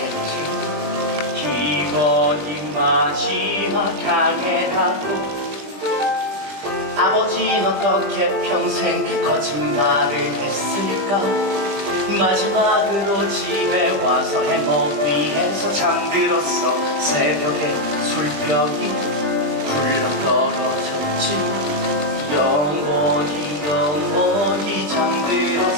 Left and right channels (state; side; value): late; left; 20 ms